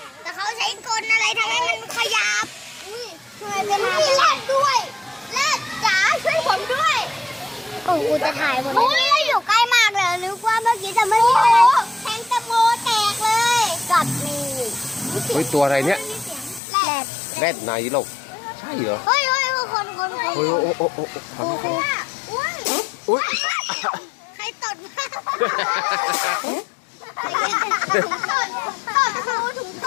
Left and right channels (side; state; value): right; drops out; at 16.6 s